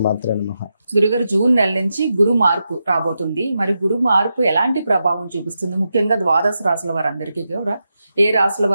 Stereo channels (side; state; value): both; inverted; correlation -0.88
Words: నమః. గురుగారు, జూన్ నెల నుంచి గురు మార్పు రాబోతుంది. మరి గురు మార్పు ఎలాంటి ప్రభావం చూపిస్తుంది? ముఖ్యంగా ద్వాదశ రాశుల వారందరికీ కూడా ఏ రాశుల